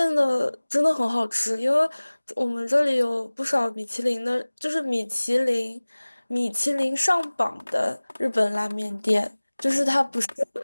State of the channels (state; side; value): inverted; both; correlation -1.00